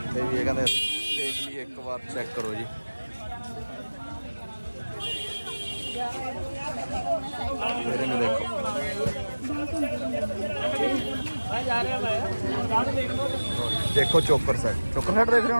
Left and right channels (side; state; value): both; inverted; correlation -1.00